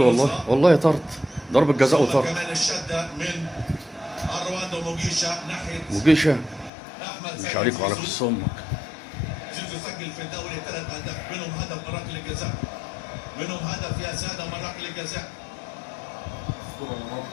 والله طرد، ضربة جزاء وطرد. كمان الشده من اروان وموجيشا ناحيه موجيشا احمد مش عليك وعلى قص امك. زيزو سجل في الدوري 3 اهداف، منهم هدف من ركله الجزاء، منهم هدف يا ساده من ركله الجزاء.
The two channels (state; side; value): drops out; right; at 6.7 s